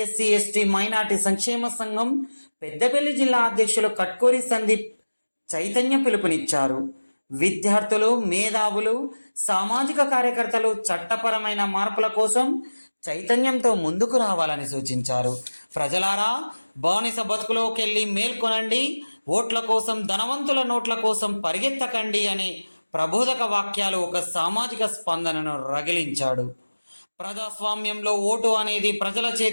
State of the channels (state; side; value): inverted; both; correlation -1.00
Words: SC ST minority సంక్షేమ సంఘం పెద్దపల్లి జిల్లా అధ్యక్షులు కట్కూరి సందీప్ చైతన్య పిలుపునిచ్చారు. విద్యార్థులు, మేధావులు, సామాజిక కార్యకర్తలు చట్టపరమైన మార్పుల కోసం చైతన్యంతో ముందుకు రావాలని సూచించారు. ప్రజలారా, బానిస బతుకులోకెళ్ళి మేల్కొనండి, ఓట్ల కోసం, ధనవంతుల నోట్ల కోసం పరిగెత్తకండి అనే ప్రబోధక వాక్యాలు ఒక సామాజిక స్పందనను రగిలించాడు. ప్రజాస్వామ్యంలో ఓటు అనేది ప్రజల